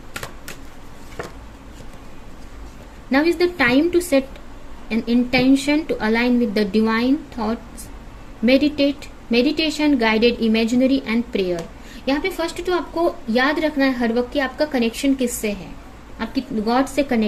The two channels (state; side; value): identical; both; correlation 1.00